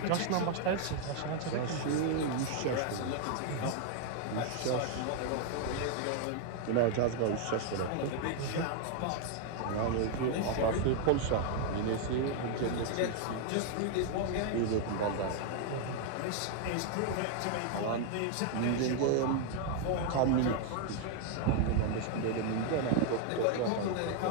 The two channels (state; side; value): different; both; correlation 0.00